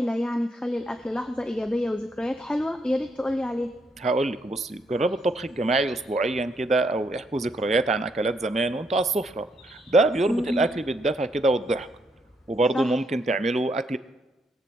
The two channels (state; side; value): normal; both; correlation 0.75